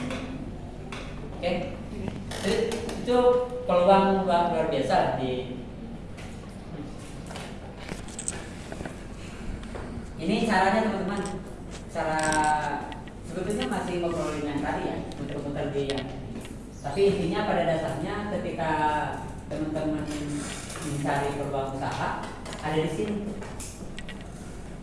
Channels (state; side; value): identical; both; correlation 1.00